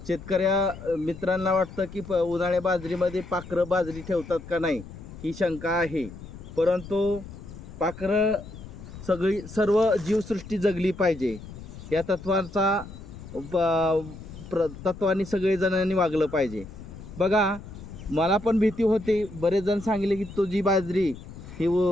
शेतकऱ्या मित्रांना वाटतं की उन्हाळ्या बाजरीमध्ये पाखरं बाजरी ठेवतात का नाही ही शंका आहे. परंतु पाखरं सर्व जीवसृष्टी जगली पाहिजे या तत्वाचा तत्वाने सगळेजणांनी वागलं पाहिजे. बघा, मला पण भीती होती. बरेच जण सांगितले की तुझी बाजरी ही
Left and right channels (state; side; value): noise; left; rumble, 14 dB below the sound